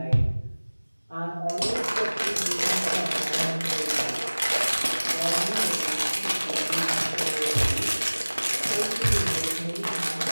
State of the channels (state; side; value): inverted; both; correlation -1.00